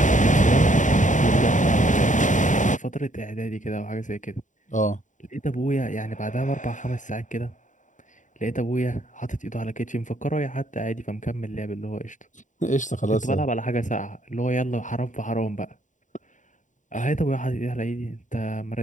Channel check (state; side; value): late; right; 0.36 ms